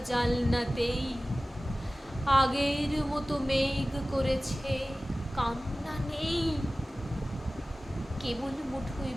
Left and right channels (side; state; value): both; normal; correlation 0.97